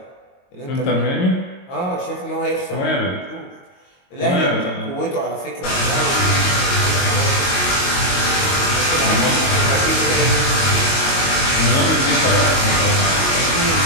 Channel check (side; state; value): right; late; 22 ms